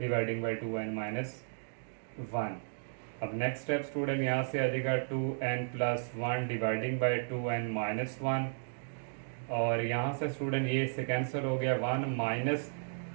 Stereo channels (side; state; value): left; silent; digital silence